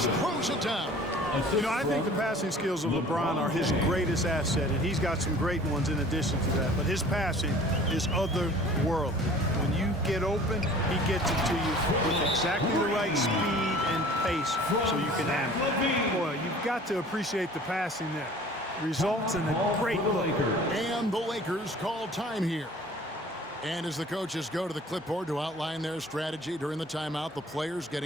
throws it down. You know, I think the passing skills of LeBron are his greatest asset, and he's got some great ones in addition to that. But his passing is otherworldly. When you get open, he gets it to you with exactly the right speed and pace so you can handle it. Boy, you've got to appreciate the passing there. Results in a great look. And the Lakers call time here. And as the coaches go to the clipboard to outline their strategy during the timeout, the players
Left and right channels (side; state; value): both; normal; correlation 0.48